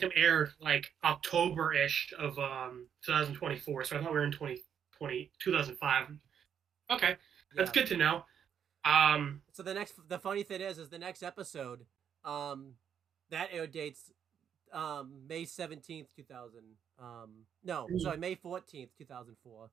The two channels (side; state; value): left; quieter; 8.3 dB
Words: aired like October-ish of 2024, so I thought we were in 2005. Okay, that's Yeah. good to know. So the funny thing is the next episode, um, that air dates May 17th, 2000. No, sorry, May 14th, 2004.